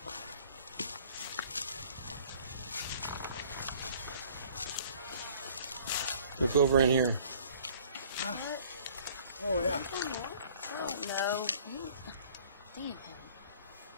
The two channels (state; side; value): inverted; both; correlation -0.53